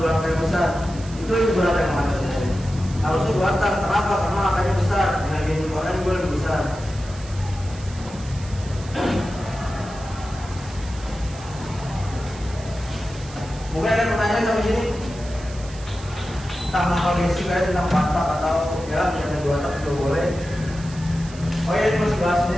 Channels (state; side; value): noise; right; hiss, 19 dB below the sound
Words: 2 angka yang besar. Itu berapa yang mana? Harusnya 2 tak. Kenapa? Karena angkanya besar. Energi inputannya juga lebih besar. Mungkin ada pertanyaan sampai sini tentang kondisi kayak tentang patak atau ya ada 2 tak juga boleh. Oh ya, ini masih bahas